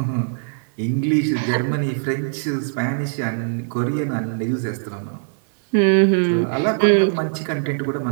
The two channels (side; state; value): left; silent; 62 dB below the other